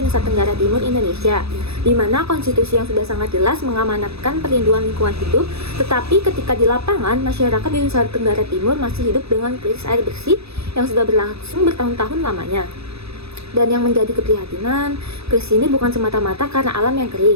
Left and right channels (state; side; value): late; left; 0.78 ms